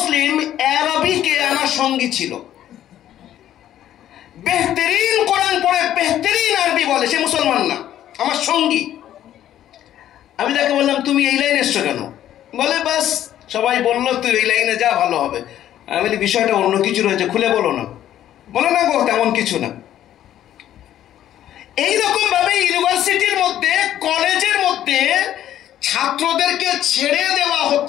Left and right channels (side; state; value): right; quieter; 11.8 dB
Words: আরবিকে আমার সঙ্গী ছিল। বেহতরিন কোরআন পড়ে, বেহতরিন আরবি বলে, সে মুসলমান না, আমার সঙ্গী। আমি তাকে বললাম তুমি এই লাইনে এসছো কেন? বলে বাস সবাই বললো তুই এই লাইনে যা, ভালো হবে। আমি বলি বিষয়টা অন্য কিছু রয়েছে, খুলে বলো না। বলে না গো তেমন কিছু না। এইরকম ভাবে ইউনিভার্সিটির মধ্যে, কলেজের মধ্যে ছাত্রদেরকে ছেড়ে দেওয়া